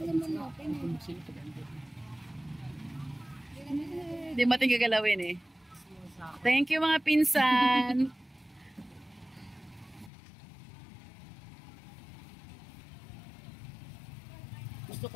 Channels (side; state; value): right; drops out; at 10.1 s